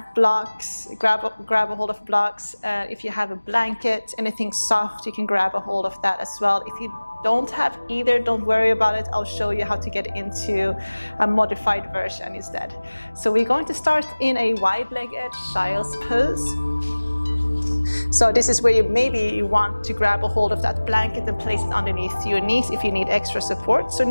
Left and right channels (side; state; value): both; inverted; correlation -1.00